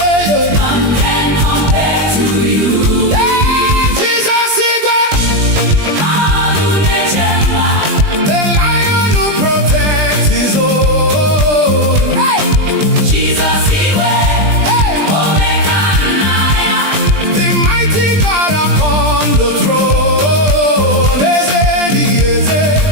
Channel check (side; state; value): left; late; 20 ms